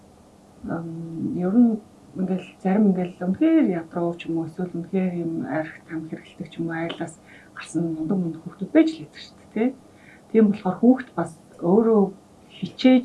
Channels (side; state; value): both; identical; correlation 1.00